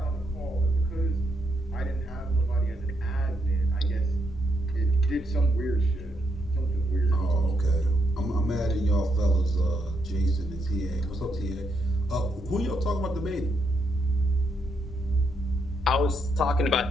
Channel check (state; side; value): normal; both; correlation 0.78